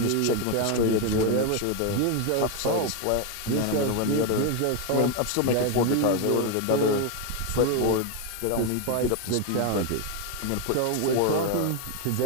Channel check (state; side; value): different; both; correlation 0.02